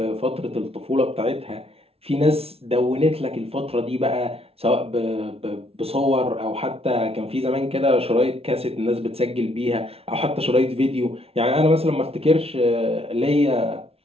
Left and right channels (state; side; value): late; left; 0.29 ms